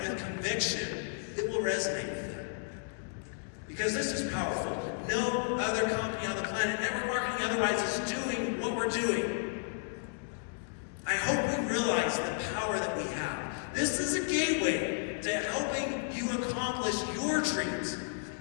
with conviction, it will resonate with them. Because this is powerful. No other company on the planet, network marketing otherwise, is doing what we're doing. I hope we realize the power that we have. This is a gateway to helping you accomplish your dreams.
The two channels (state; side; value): silent; right; digital silence